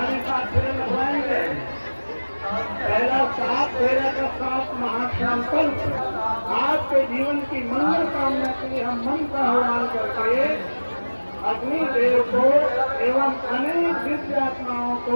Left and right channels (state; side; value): inverted; both; correlation -1.00